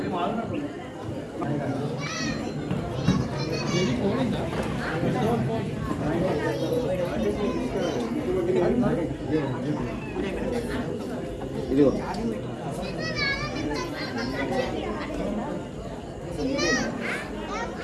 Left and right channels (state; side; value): identical; both; correlation 1.00